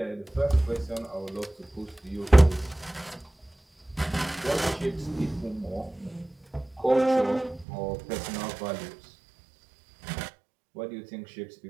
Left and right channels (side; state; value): left; drops out; at 7.7 s